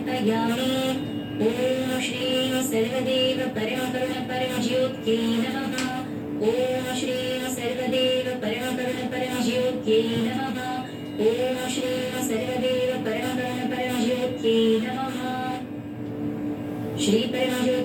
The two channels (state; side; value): identical; both; correlation 1.00